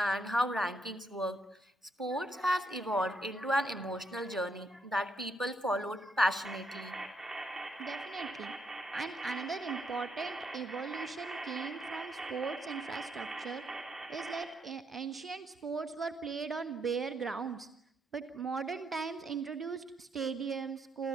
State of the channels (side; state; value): both; normal; correlation 0.76